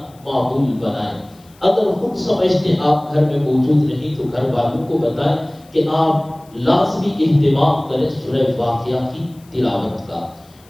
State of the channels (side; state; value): left; noise; hiss, 29 dB below the sound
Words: معمول بنائیں۔ اگر خود سمجھتے آپ گھر میں موجود نہیں تو گھر والوں کو بتائیں کہ آپ لازمی اہتمام کریں سورہ واقعہ کی تلاوت کا۔